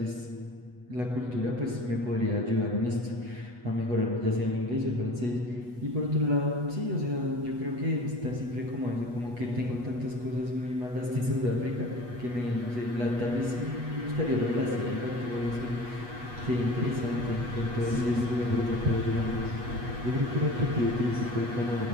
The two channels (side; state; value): left; late; 8.2 ms